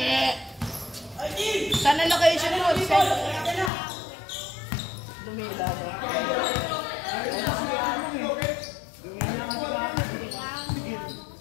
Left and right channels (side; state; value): right; drops out; at 3.7 s